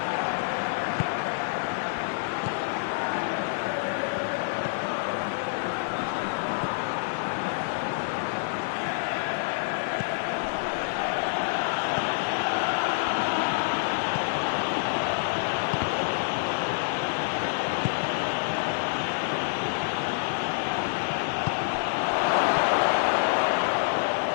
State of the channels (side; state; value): right; silent; digital silence